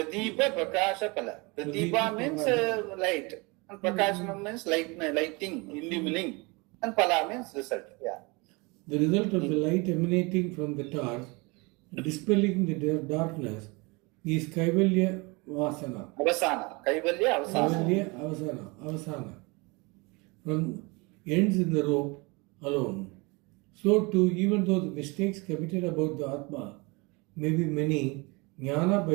Prakasha Pala. Pradipa means light. And Prakashana means lighting, illumining. And Pala means result. Yeah. The result of the light emanating from the torch, dispelling the darkness, is Kaivalya Vasana. Avasana. Kaivalya Avasana. From ends in the rope alone. So too, even though the mistakes committed about the Atma may be many, Jnana by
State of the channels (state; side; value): quieter; left; 27.2 dB